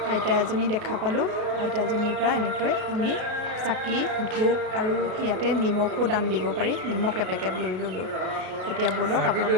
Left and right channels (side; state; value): left; late; 33 ms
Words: আইতা এজনী দেখা পালোঁ। আইতাজনীৰ পৰা এনেকৈ আমি চাকি ধূপ আৰু ইয়াতে নিমখো দান দিব পাৰি, নিমখ এপেকেট লৈ ল'লোঁ। এতিয়া ব'লক